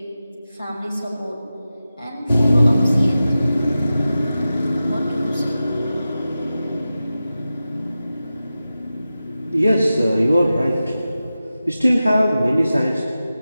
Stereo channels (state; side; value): inverted; both; correlation -0.94